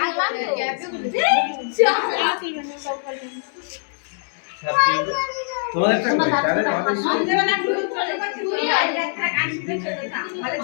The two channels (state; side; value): silent; right; digital silence